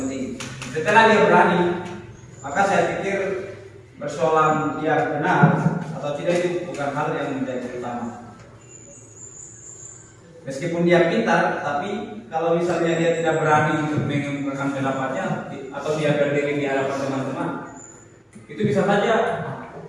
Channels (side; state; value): both; identical; correlation 1.00